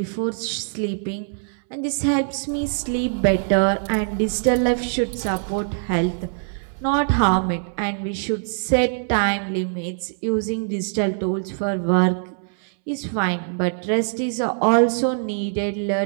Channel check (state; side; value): silent; left; 64 dB below the other